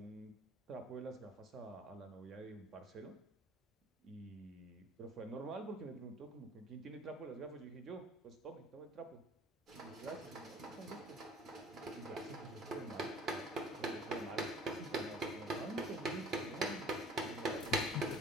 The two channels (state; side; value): normal; both; correlation 0.51